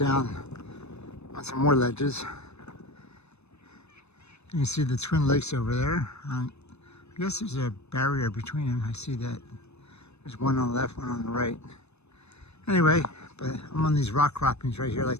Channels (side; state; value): right; late; 0.81 ms